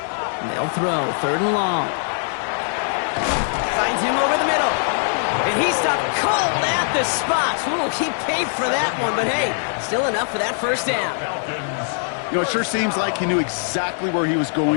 They'll throw, third and long. Finds him over the middle. And he stopped cold at the spot. Ooh, he paid for that one, but hey, still enough for that first down. You know, it sure seems like he knew exactly where he was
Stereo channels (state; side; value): silent; right; 65 dB below the other